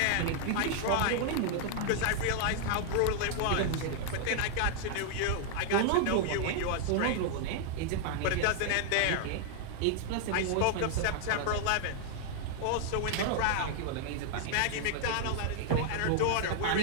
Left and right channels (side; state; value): both; different; correlation 0.00